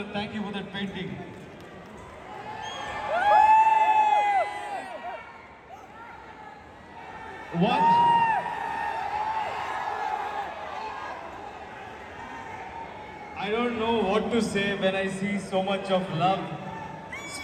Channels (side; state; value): both; identical; correlation 1.00